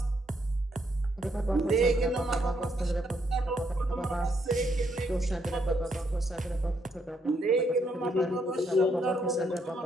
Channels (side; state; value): both; normal; correlation 0.75